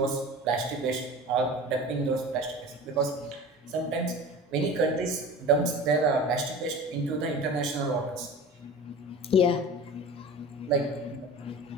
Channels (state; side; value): normal; both; correlation 0.36